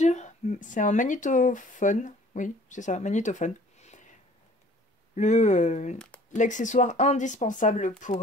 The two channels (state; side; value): normal; both; correlation 0.53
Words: c'est un magnétophone. Oui, c'est ça, magnétophone. L'accessoire indispensable